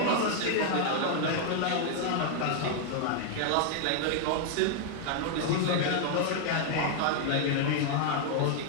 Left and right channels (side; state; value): both; different; correlation 0.00